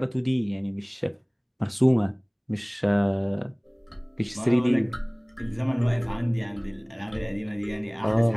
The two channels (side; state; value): both; identical; correlation 1.00